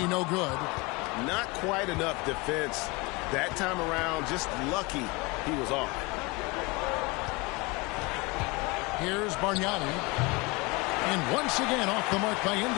no good. Not quite enough defense that time around. Just lucky he was off. Here's Bargnani. And once again off the mark by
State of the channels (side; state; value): right; quieter; 25.4 dB